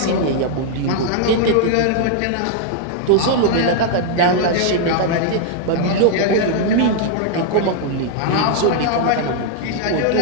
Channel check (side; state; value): both; different; correlation 0.00